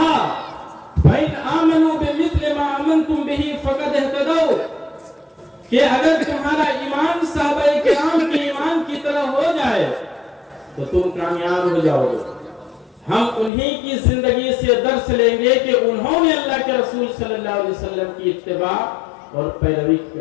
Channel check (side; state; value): right; drops out; at 13.5 s